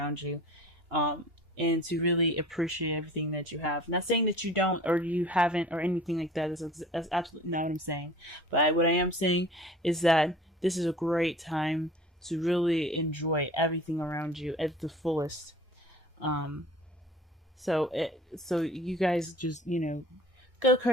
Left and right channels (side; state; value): both; normal; correlation 0.44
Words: you, and to really appreciate everything that you have. Not saying that you don't or you haven't or anything like that. That's absolutely not what I'm saying. But what I am saying is that this is a great time to really enjoy everything around you at the fullest. Um, so you guys just, go